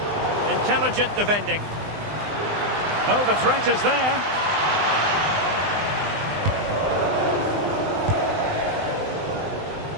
Intelligent defending. Oh, the threat is there.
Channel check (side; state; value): left; late; 20 ms